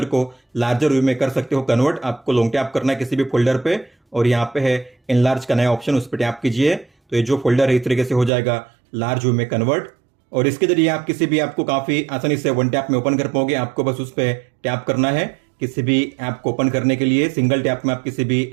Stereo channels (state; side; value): drops out; left; at 8.3 s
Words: को लार्जर व्यू में कर सकते हो कन्वर्ट। आपको लॉन्ग टैप करना है किसी भी फोल्डर पे और यहाँ पे है एनलार्ज का नया ऑप्शन, उस पर टैप कीजिए तो ये जो फोल्डर है इस तरीके से हो जाएगा लार्ज व्यू में कन्वर्ट। और इसके जरिए आप किसी भी ऐप को काफी आसानी से वन टैप में ओपन कर पाओगे। आपको बस उस पर टैप करना है किसी भी ऐप को ओपन करने के लिए। सिंगल टैप में आप किसी भी